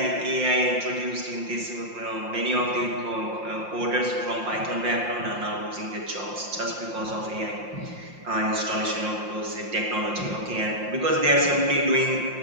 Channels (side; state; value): left; late; 5.7 ms